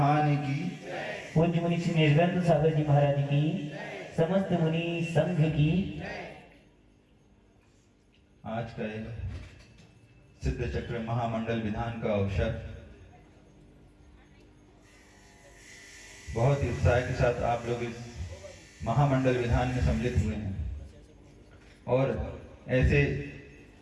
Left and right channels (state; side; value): identical; both; correlation 1.00